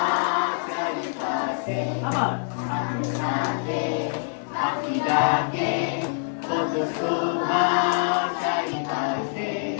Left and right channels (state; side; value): silent; right; 58 dB below the other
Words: চারিপাশে, আবার সাথে সাথে পাখি ডাকে, কত শোভা চারিপাশে,